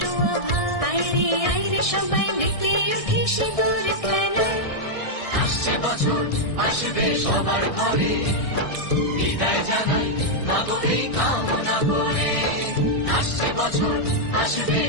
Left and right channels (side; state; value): right; late; 1.6 ms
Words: আভা, আইরে সবাই মেতে উঠে সিঁদুর খেলায়। আসছে বছর আসবে সবার ঘরে, বিদায় জানাই মাগো এই কামনা করে। আসছে বছর আসবে